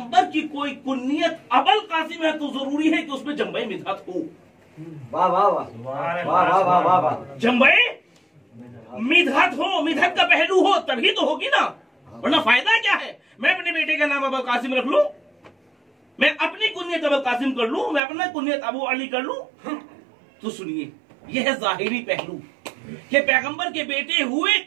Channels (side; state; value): left; drops out; at 18.0 s